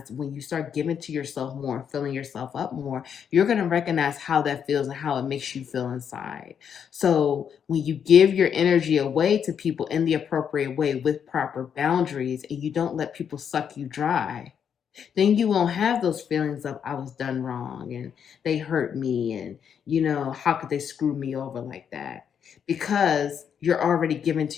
when you start giving to yourself more and filling yourself up more, you're going to recognize how that feels and how it makes you feel inside. So when you give your energy away to people in the appropriate way with proper boundaries, and you don't let people suck you dry, then you won't have those feelings of, I was done wrong and they hurt me, and how could they screw me over like that? Because you're already giving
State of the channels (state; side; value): quieter; right; 7.9 dB